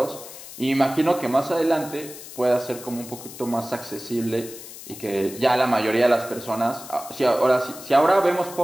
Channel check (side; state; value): left; noise; hiss, 14 dB below the sound